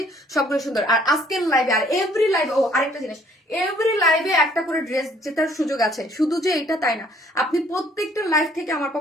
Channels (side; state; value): both; normal; correlation 0.60